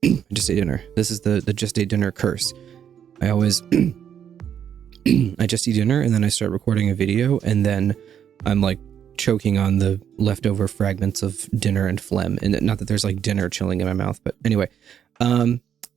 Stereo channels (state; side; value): quieter; left; 8.9 dB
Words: I just ate dinner. This is the just ate dinner curse. I always, I just eat dinner and then I start recording a video and then I'm like choking on the leftover fragments of dinner and phlegm. And not that there's like dinner chilling in my mouth, but anyway,